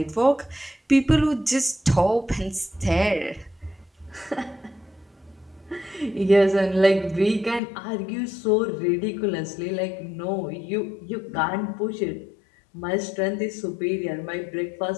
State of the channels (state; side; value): drops out; right; at 7.6 s